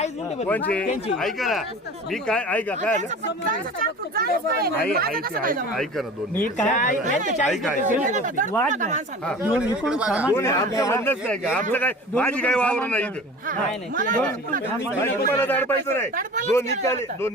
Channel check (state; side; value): normal; both; correlation 0.39